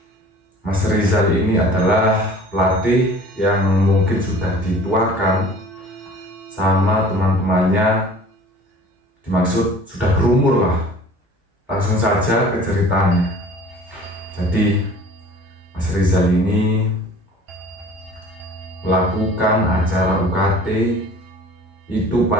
Mas Rizal ini adalah pelatih yang mungkin sudah dituakan sama teman-temannya, dimaksud sudah berumur lah. Langsung saja ke ceritanya. Jadi Mas Rizal ini melakukan acara UKT itu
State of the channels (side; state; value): both; normal; correlation 0.46